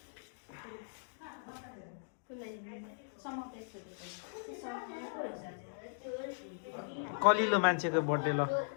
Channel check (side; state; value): right; silent; digital silence